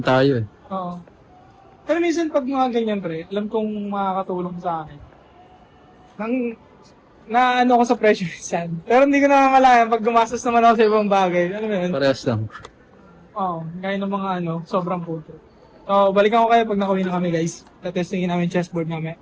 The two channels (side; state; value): both; identical; correlation 1.00